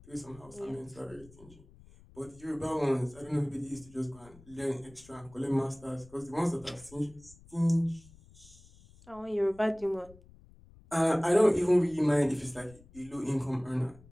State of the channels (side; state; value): left; noise; rumble, 24 dB below the sound